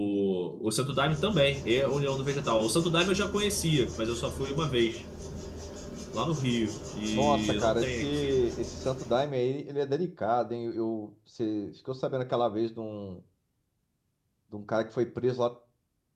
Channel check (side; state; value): both; identical; correlation 1.00